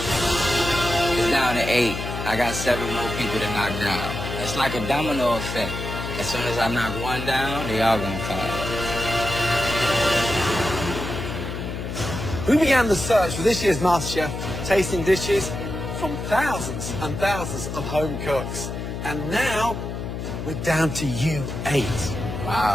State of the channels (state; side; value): noise; left; hum, 6 dB below the sound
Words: It's down to 8. I got 7 more people to knock down. It's like a domino effect. As soon as I knock one down, they all gonna follow. We began the search for this year's MasterChef, tasting dishes from thousands and thousands of home cooks. And now, we're down to you 8.